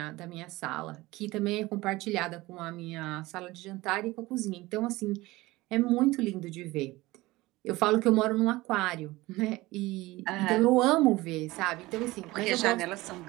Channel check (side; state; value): left; quieter; 19.8 dB